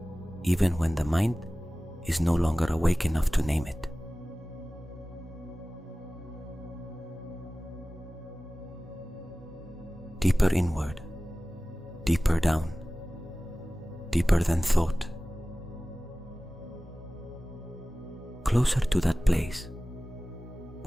even when the mind is no longer awake enough to name it. Deeper inward, deeper down, deeper than thought. Closer to that place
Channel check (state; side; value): normal; both; correlation 0.97